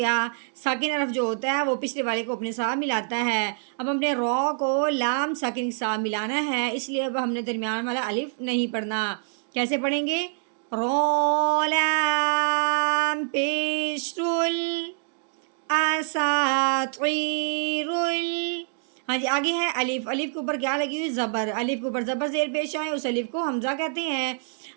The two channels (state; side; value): silent; left; 61 dB below the other